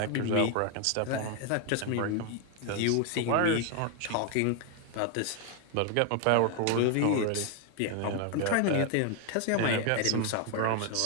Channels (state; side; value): different; both; correlation 0.01